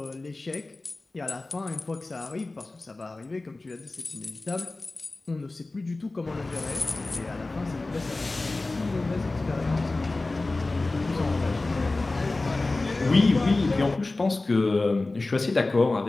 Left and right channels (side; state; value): right; quieter; 3.2 dB